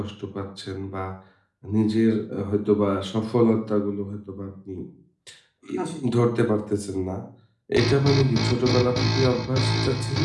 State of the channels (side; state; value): both; identical; correlation 1.00